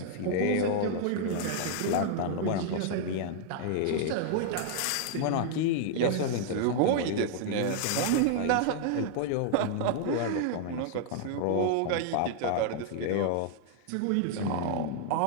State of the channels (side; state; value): both; different; correlation -0.01